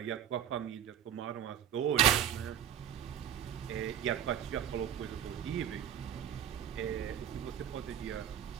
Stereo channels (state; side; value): quieter; left; 9.9 dB